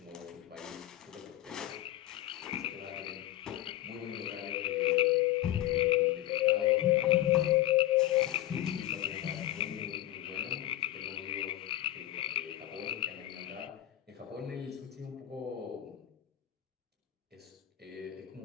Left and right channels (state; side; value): quieter; right; 14.2 dB